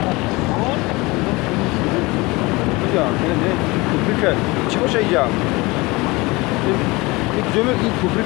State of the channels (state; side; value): quieter; right; 23.4 dB